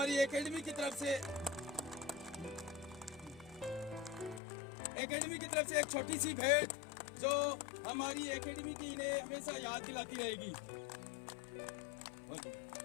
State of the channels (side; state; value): right; drops out; at 4.4 s